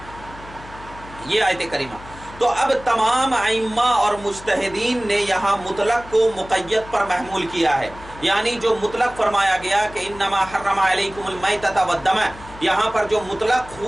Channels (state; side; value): noise; left; hum, 18 dB below the sound